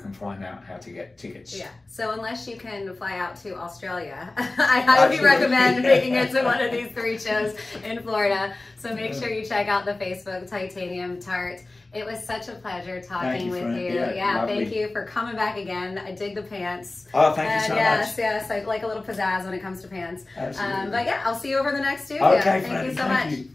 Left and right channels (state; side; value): quieter; right; 3.0 dB